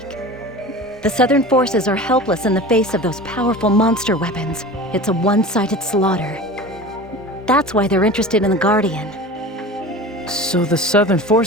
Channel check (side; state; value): both; normal; correlation 0.35